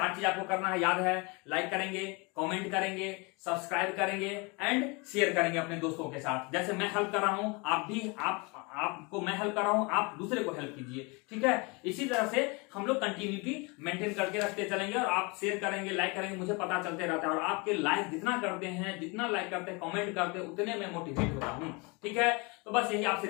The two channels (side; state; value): right; quieter; 28.8 dB